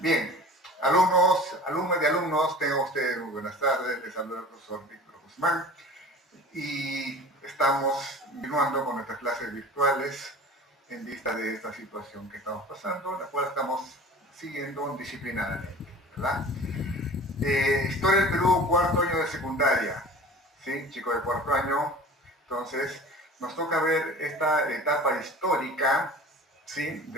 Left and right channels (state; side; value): normal; both; correlation 0.40